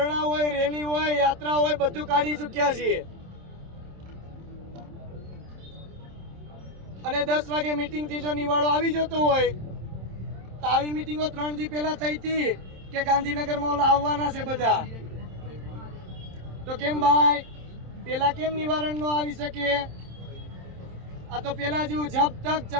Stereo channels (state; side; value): late; left; 27 ms